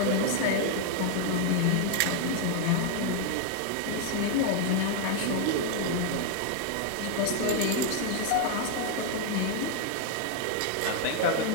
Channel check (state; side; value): different; both; correlation 0.00